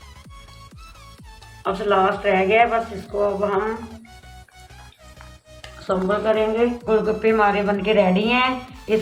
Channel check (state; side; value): identical; both; correlation 1.00